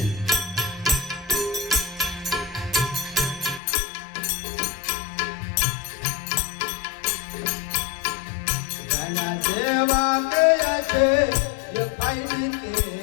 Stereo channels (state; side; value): drops out; right; at 3.6 s